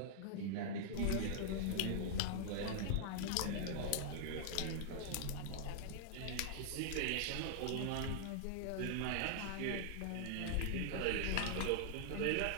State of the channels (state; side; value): different; both; correlation -0.01